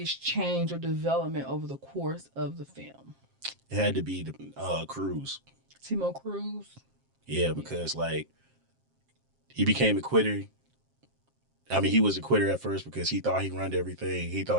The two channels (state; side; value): late; left; 7.5 ms